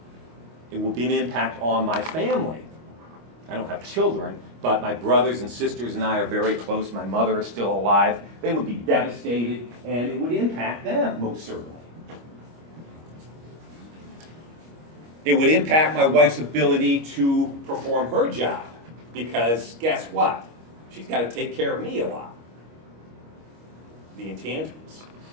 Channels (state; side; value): late; left; 25 ms